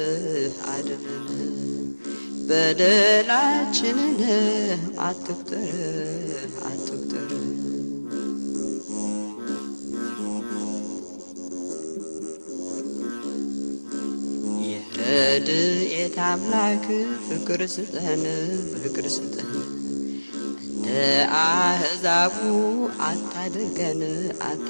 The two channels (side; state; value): both; inverted; correlation -1.00